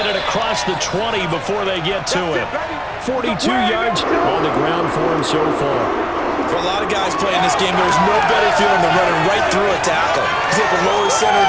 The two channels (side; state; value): both; identical; correlation 1.00